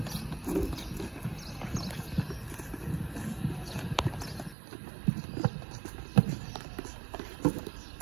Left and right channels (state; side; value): drops out; left; at 4.5 s